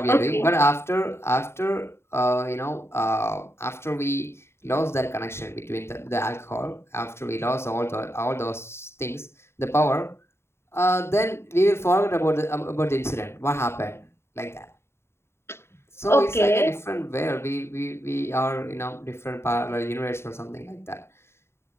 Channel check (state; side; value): late; right; 0.12 ms